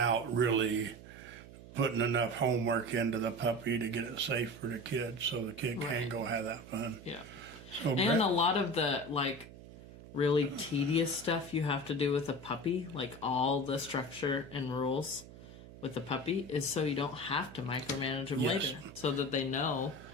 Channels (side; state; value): right; noise; hum, 17 dB below the sound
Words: really putting enough homework into the puppy to get it safe for the kid so the kid can go have that fun. Yeah. So and a lot of the, really tedious stuff you have to do with a puppy, like all the structure and rules with the puppy, is so you don't have to micromanage them later, so that they know.